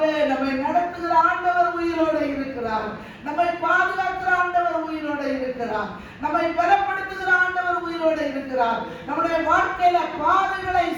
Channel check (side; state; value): both; identical; correlation 1.00